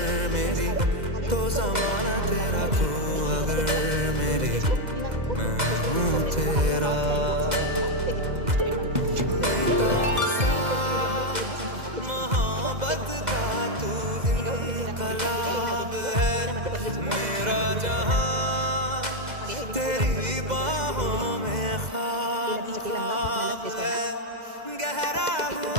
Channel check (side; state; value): left; late; 2.0 ms